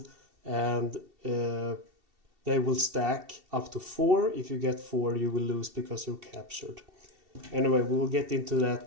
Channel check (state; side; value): late; left; 2.7 ms